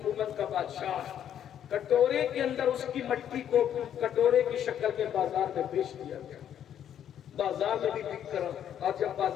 کا بادشاہ کٹورے کے اندر اس کی مٹی کو کٹورے کی شکل میں بازار میں بیچ دیا گیا، بازار میں بھی بک کر، اور جب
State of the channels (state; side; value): quieter; right; 9.9 dB